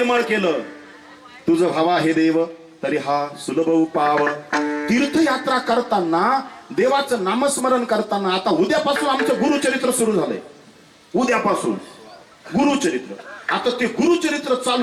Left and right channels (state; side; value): identical; both; correlation 1.00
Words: केलं, तुझं व्हावा हे देव तरी हा सुलभ उपाव. तीर्थयात्रा करताना, देवाचं नामस्मरण करताना, आता उद्यापासून आमचं गुरुचरित्र सुरू झालंय. उद्यापासून गुरुचरित्र. आता ते गुरुचरित्र